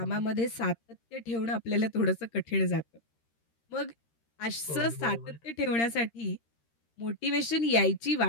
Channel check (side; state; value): right; late; 13 ms